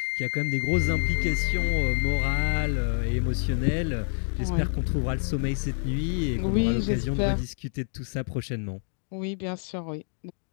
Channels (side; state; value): right; silent; digital silence